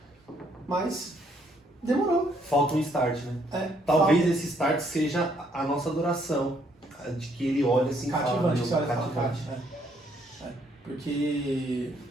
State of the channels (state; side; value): normal; both; correlation 0.69